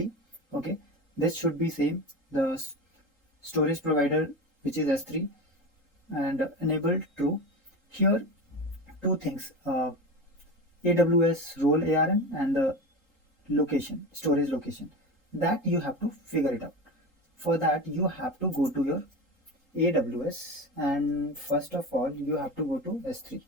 Okay, this should be same. The storage provider, which is S3, and enabled true. Here two things, AWS role ARN and the location, storage location, that you have to figure it out. For that you have to go to your AWS, and first of all you have to go to S3.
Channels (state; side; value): normal; both; correlation 0.25